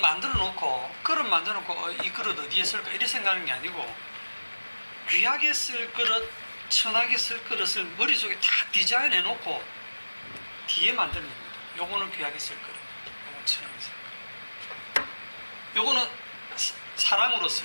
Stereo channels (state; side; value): inverted; both; correlation -1.00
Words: 놓고 이 그릇 어디에 쓸까 이렇게 생각하는 게 아니고, 귀하게 쓸 그릇, 천하게 쓸 그릇을 머릿속에 다 디자인해 놓고 뒤에 만드는 겁니다. 요거는 귀하게 쓸 그릇, 요거는 천하게 쓸 그릇, 요거는 사랑으로